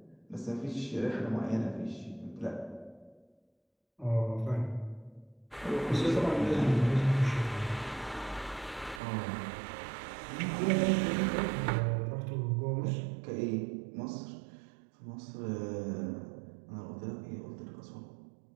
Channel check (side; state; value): left; drops out; at 9.0 s